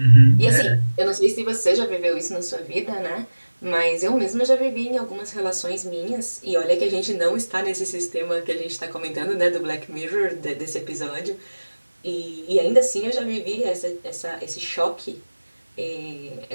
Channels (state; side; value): inverted; both; correlation -1.00